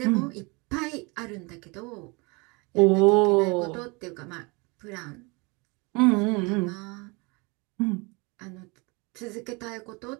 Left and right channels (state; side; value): quieter; left; 28.3 dB